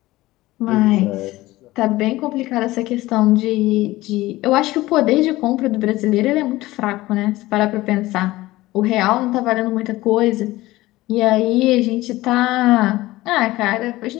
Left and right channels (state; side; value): quieter; right; 18.0 dB